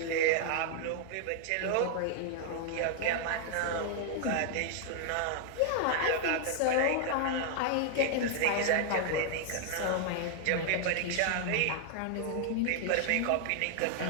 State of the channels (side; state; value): both; different; correlation 0.00